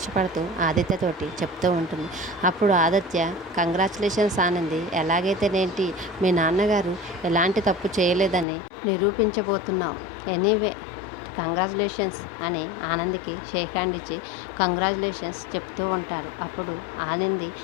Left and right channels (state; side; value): drops out; right; at 8.5 s